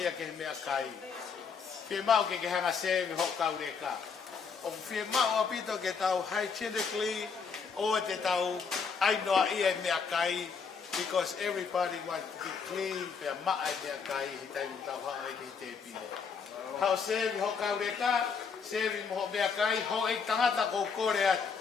ke mea kai. Whie mau ke hanga sevi ho kaure ka. O whie mau apito ke tau hygienically, o te tau ainoa ia mea kai, because everybody wants to be clean, pea maa mea kai, hi taimu tau haa e ki te pine. Hao sevi ho kaure ka, sevi mo mea kai, ho e tangata ko kore atu.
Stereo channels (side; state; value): right; quieter; 5.7 dB